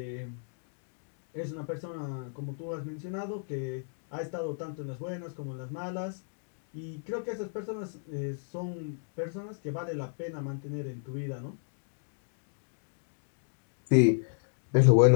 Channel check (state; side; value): silent; right; digital silence